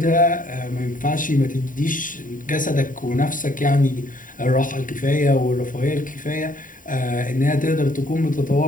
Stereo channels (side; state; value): right; late; 0.39 ms